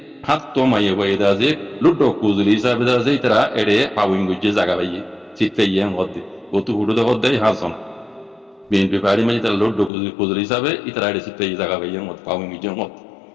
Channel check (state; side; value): drops out; right; at 9.9 s